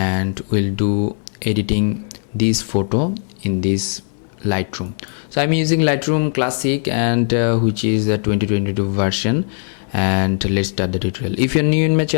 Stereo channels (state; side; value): silent; right; digital silence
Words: we'll do editing this photo in this Lightroom. So I'm using Lightroom Classic, and which is the 2022 version. And let's start the tutorial. If you're new in my